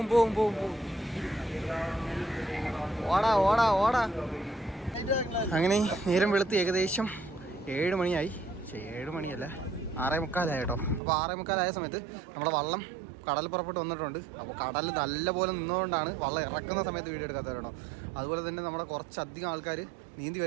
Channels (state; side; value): drops out; left; at 11.0 s